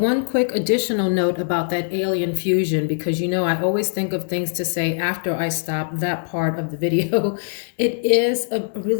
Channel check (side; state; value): right; silent; 61 dB below the other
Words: quick additional note about that Alien Fusion, because you know I always think of things to say after I stop that part of the video. It is a